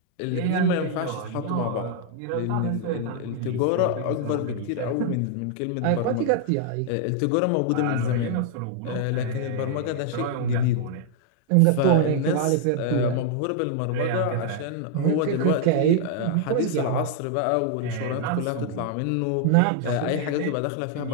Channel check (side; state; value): both; different; correlation 0.00